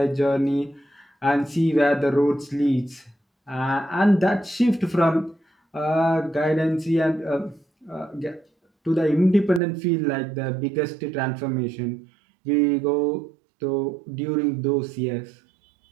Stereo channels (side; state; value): left; drops out; at 9.6 s